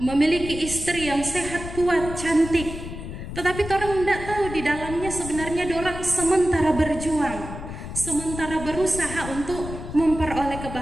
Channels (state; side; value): noise; left; rumble, 9 dB below the sound